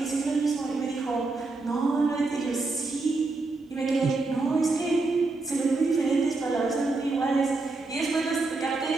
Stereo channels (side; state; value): left; quieter; 3.5 dB